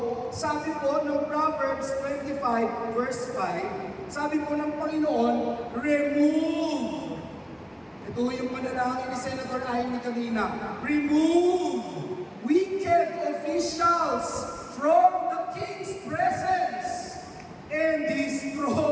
sabi po ng Proverbs 25 verse 5, sabi po ng Panginoon, remove Ito yung panalangin ni Senator Amy kanina. Remove wicked officials from the King's presence, and His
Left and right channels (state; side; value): identical; both; correlation 1.00